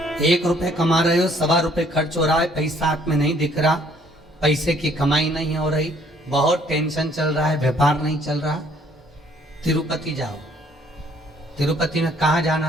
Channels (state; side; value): normal; both; correlation 0.62